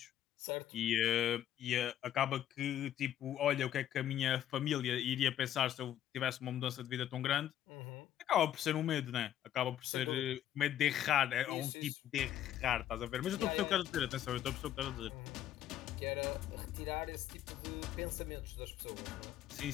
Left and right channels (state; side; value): quieter; right; 11.4 dB